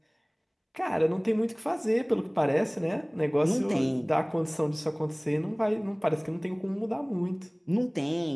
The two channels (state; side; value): identical; both; correlation 1.00